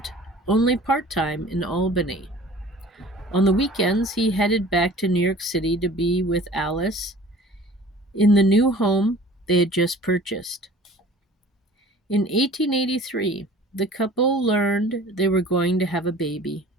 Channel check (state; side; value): normal; both; correlation 0.47